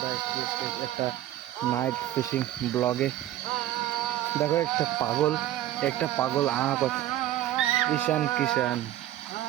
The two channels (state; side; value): quieter; left; 13.5 dB